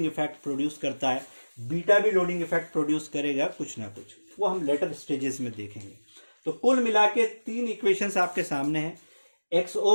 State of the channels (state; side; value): inverted; both; correlation -1.00